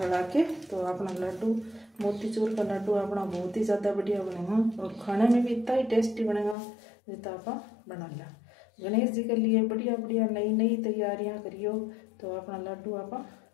के। तो अपना लड्डू मोतीचूर का लड्डू अपना बहुत ही ज़्यादा बढ़िया बनेगा और खाने में भी इतना ही टेस्टी बनेगा जितना आप बना लिया। गणेश जी के लिए बढ़िया बढ़िया नई नई तैयारियां करियो। तो अपना लड्डू आप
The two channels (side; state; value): right; drops out; at 6.6 s